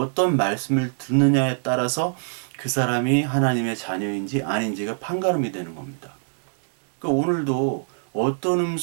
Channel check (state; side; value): silent; left; digital silence